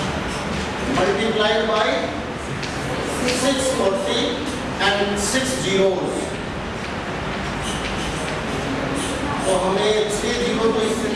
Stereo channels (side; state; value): both; identical; correlation 1.00